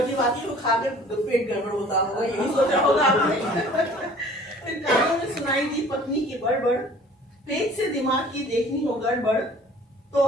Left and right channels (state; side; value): normal; both; correlation 0.50